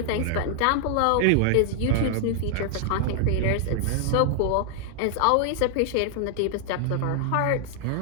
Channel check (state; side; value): different; both; correlation 0.00